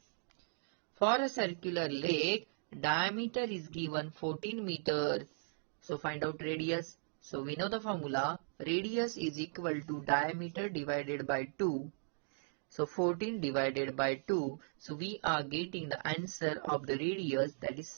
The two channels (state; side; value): silent; left; digital silence